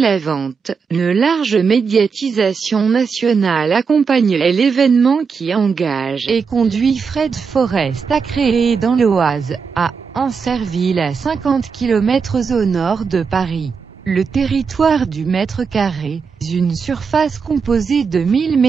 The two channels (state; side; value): quieter; left; 5.6 dB